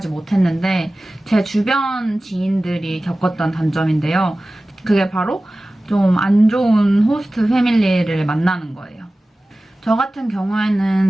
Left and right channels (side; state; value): both; normal; correlation 0.97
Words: 못했는데 제 주변 지인들이 겪었던 단점인데요. 그게 바로 좀 안 좋은 호스트 패밀리를 만나는 거예요. 저 같은